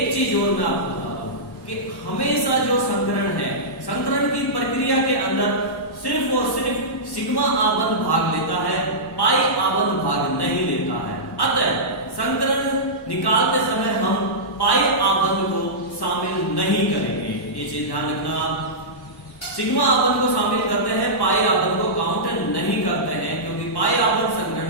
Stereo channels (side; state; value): right; late; 1.1 ms